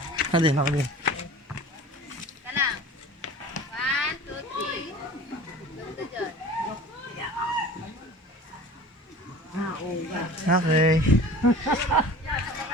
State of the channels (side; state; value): both; normal; correlation 0.41